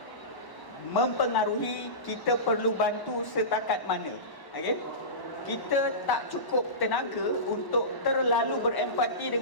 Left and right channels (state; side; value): late; right; 1.1 ms